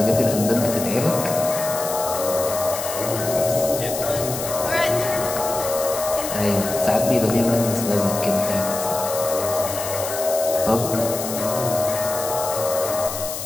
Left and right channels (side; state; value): left; noise; hiss, 7 dB below the sound